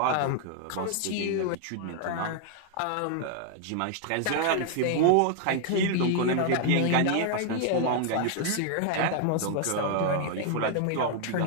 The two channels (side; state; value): both; different; correlation 0.00